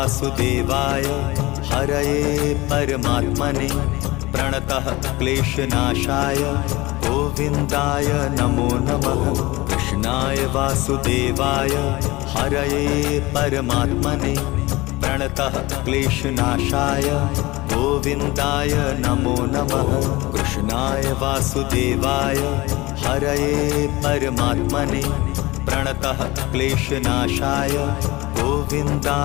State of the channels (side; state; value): right; quieter; 21.0 dB